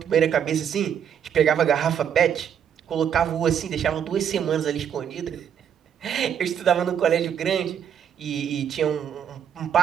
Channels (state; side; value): quieter; left; 8.7 dB